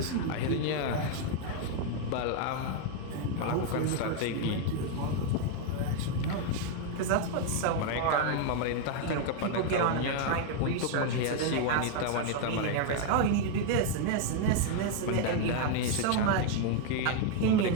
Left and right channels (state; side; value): different; both; correlation 0.00